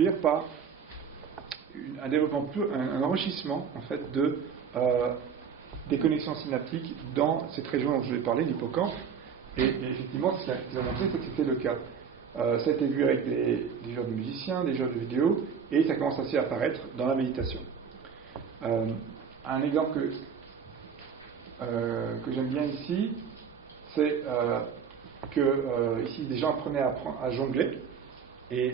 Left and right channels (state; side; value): quieter; left; 6.8 dB